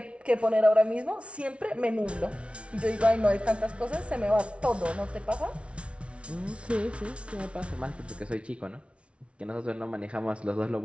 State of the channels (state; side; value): late; left; 0.060 ms